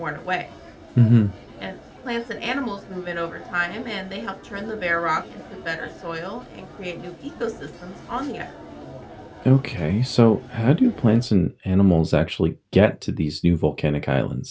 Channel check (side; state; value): both; identical; correlation 1.00